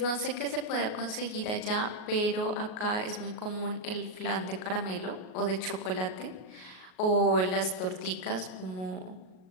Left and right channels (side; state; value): right; late; 38 ms